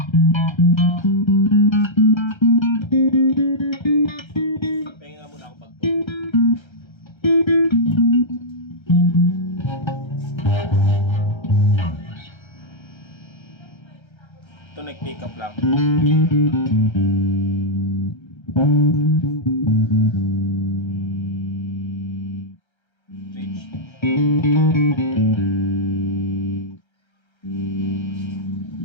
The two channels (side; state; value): right; late; 1.3 ms